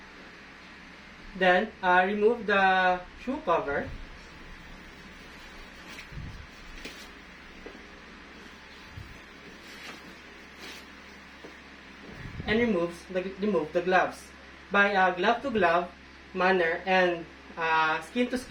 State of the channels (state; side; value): identical; both; correlation 1.00